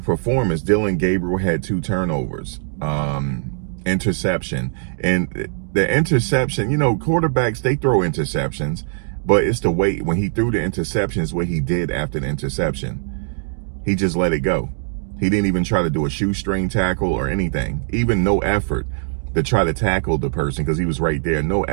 performance. Dillon Gabriel had 2 turnovers, interception. And the interception, quarterbacks, they throw interceptions, but it's the way, when he threw the interceptions, what he did after the interception, he just let it go. He didn't even try to do a shoestring tackle or anything, even no effort to try to tackle the person because he was right there. No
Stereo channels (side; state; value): left; silent; digital silence